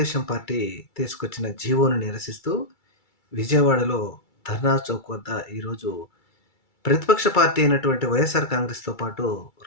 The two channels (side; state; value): right; late; 2.3 ms